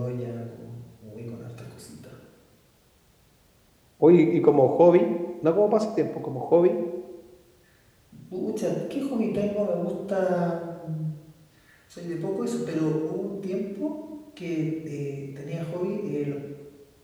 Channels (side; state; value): both; identical; correlation 1.00